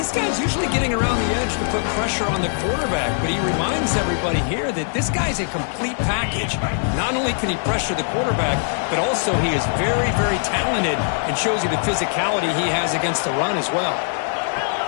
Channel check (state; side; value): silent; right; 64 dB below the other